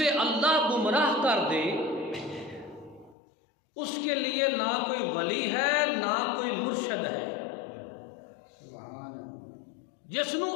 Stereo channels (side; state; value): right; drops out; at 3.2 s